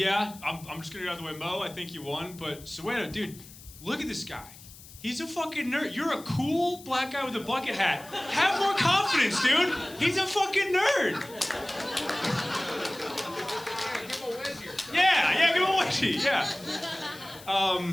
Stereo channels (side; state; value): left; noise; hiss, 19 dB below the sound